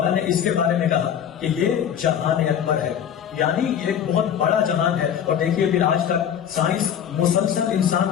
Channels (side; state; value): right; quieter; 9.0 dB